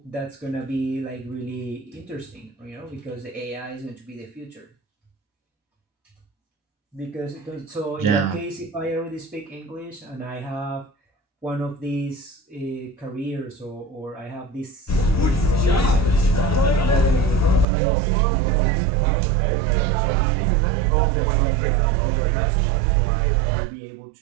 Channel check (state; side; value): drops out; left; at 17.7 s